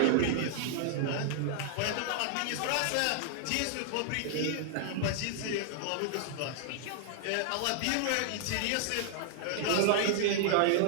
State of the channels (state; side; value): different; both; correlation -0.01